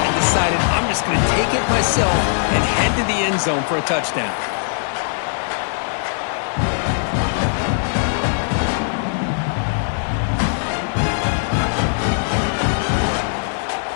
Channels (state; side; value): silent; right; digital silence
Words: decided, I'm just going to take it myself and head to the end zone for a touchdown.